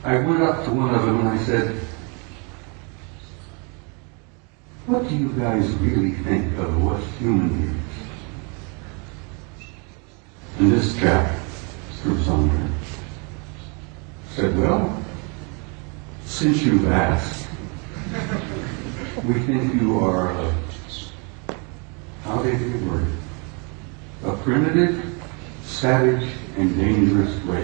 I went up to one of them and I said, what do you guys really think of what's human beings? And this chap, through somewhere, said, well, since you've asked, we think you are how did he word it? A primitive, savage, and dangerous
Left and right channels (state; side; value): quieter; left; 34.2 dB